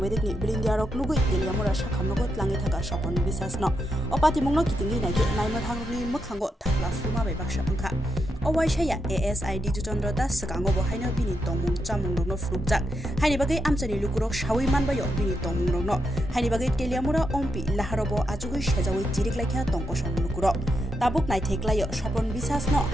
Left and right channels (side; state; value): both; normal; correlation 0.83